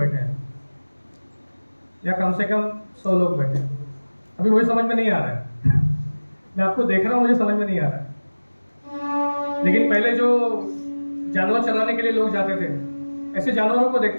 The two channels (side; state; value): both; inverted; correlation -1.00